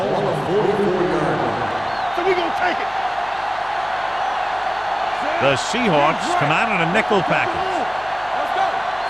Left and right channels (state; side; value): noise; left; hum, 24 dB below the sound